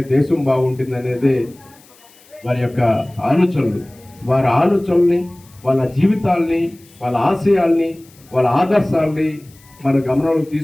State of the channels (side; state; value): left; noise; hiss, 27 dB below the sound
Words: దేశం బాగుంటుంది అనేది వారి యొక్క ఆలోచనలు. వారి ఆలోచనల్ని, వాళ్ళ జీవితాల్ని, వాళ్ళ ఆశయాల్ని, వాళ్ళ ఆదర్శాల్ని మన గమనంలోకి